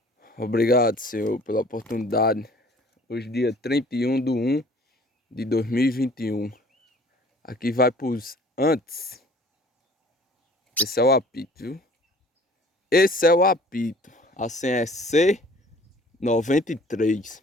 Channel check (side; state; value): both; normal; correlation 0.52